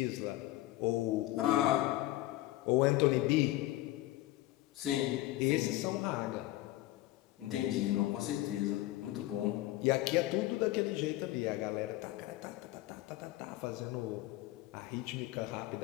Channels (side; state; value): right; quieter; 16.6 dB